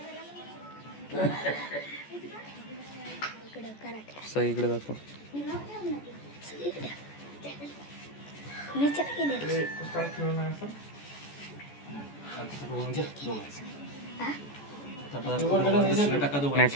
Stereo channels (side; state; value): right; late; 14 ms